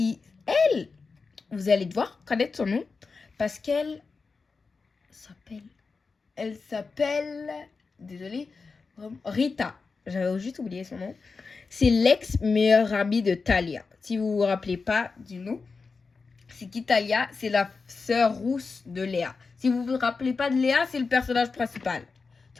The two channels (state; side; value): quieter; right; 4.5 dB